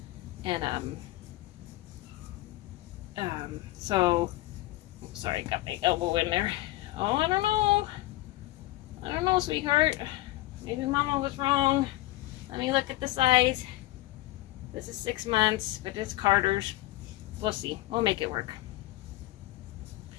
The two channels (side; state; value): right; quieter; 17.6 dB